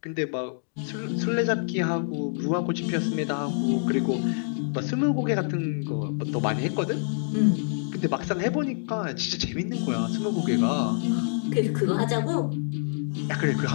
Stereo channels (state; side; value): silent; right; digital silence